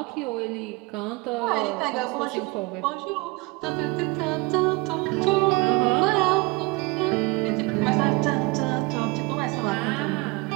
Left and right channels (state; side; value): quieter; left; 25.5 dB